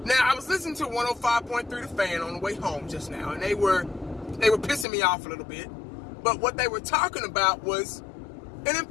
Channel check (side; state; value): right; drops out; at 4.9 s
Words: Now, I was listening to 105.3 The Fan on the way home just now, and they were pissing me off a little bit. But what they were talking about was an